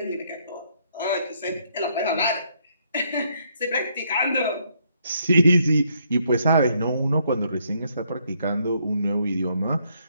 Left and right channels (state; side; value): inverted; both; correlation -0.71